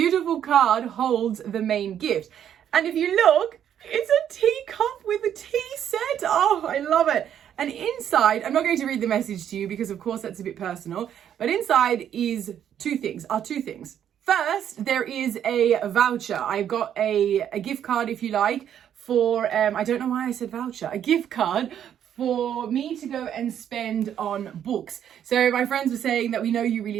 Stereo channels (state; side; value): quieter; left; 9.6 dB